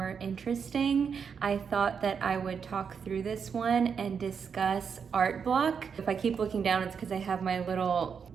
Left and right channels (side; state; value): left; quieter; 6.5 dB